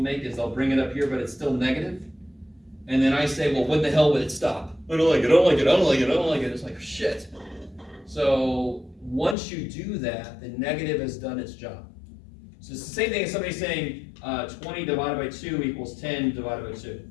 make is they'll bring it up here, but it's still negative. And then I say, well, when the hell would it stop? I don't like it, I don't like it, I don't like it, I don't like it. It's like, shit. So once you do that, the negative has done its job. So it's the same thing as somebody saying 20 divided by 2 equals 10 divided by 2.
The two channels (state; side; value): drops out; right; at 9.3 s